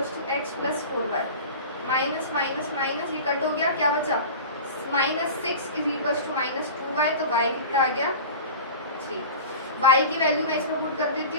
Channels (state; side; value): inverted; both; correlation -0.34